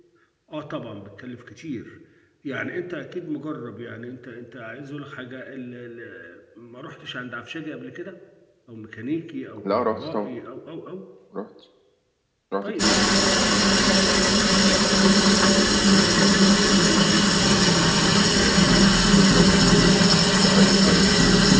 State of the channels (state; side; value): identical; both; correlation 1.00